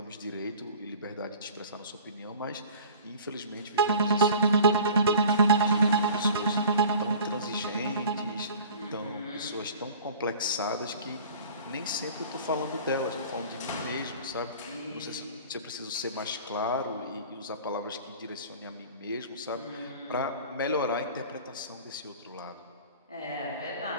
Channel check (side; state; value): both; inverted; correlation -0.44